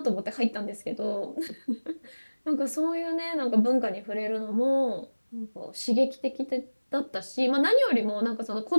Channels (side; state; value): both; inverted; correlation -1.00